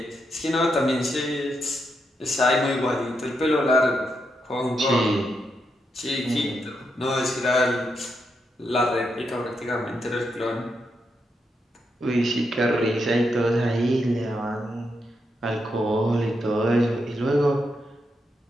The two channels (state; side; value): normal; both; correlation 0.82